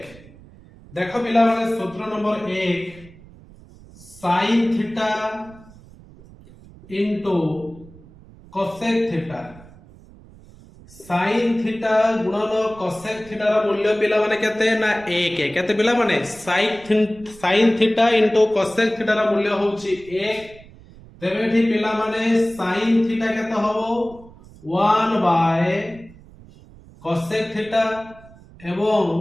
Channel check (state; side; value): noise; right; rumble, 22 dB below the sound